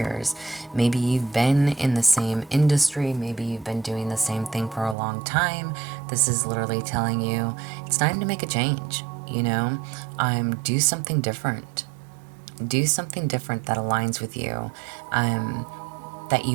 Maybe you've been in the same industry. Maybe you've been doing the same thing for a long time. This is literally telling you it's time to make a change, you know? Do something different. Do something different that aligns with you. That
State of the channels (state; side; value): drops out; left; at 5.0 s